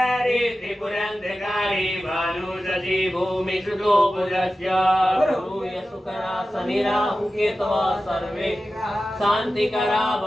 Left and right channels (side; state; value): both; normal; correlation 0.94